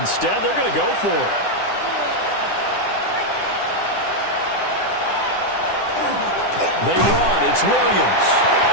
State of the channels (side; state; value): right; late; 9.9 ms